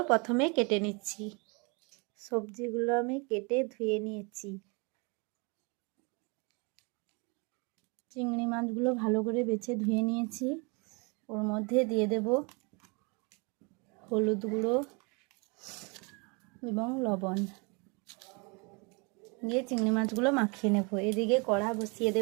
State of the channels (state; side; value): quieter; left; 31.1 dB